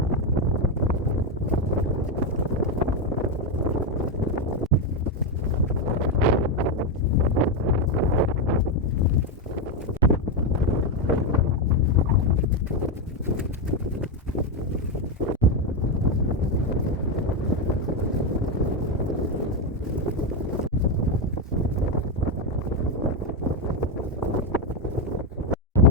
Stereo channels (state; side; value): normal; both; correlation 0.07